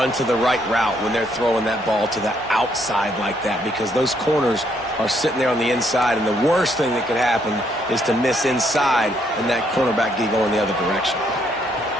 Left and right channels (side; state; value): both; normal; correlation 0.71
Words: to the right route when they're throwing that ball to the outside like that, because those corners are sitting there on the inside, and the worst thing that could happen is to miss inside and that cornerback get going the other direction.